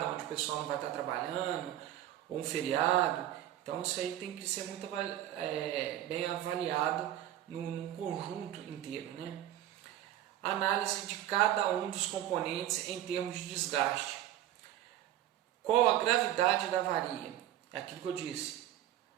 onde o pessoal não vai estar trabalhando, ou um feriado. Então isso aí tem que ser muito bem avaliado num conjunto inteiro. Análise de cada um dos componentes em termos de desgaste. Qual a gravidade da avaria? É aquilo que eu disse.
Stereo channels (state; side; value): quieter; left; 12.6 dB